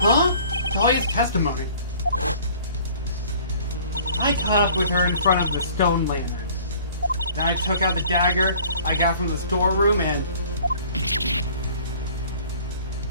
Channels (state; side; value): inverted; both; correlation -0.51